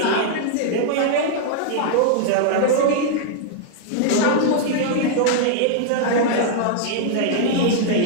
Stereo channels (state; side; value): different; both; correlation -0.01